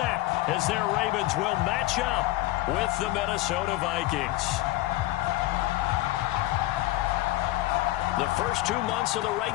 as their Ravens will match up with the Minnesota Vikings. The first 2 months of the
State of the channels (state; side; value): quieter; right; 17.3 dB